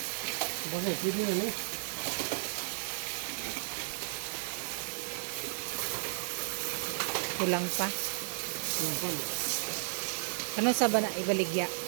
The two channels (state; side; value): silent; left; digital silence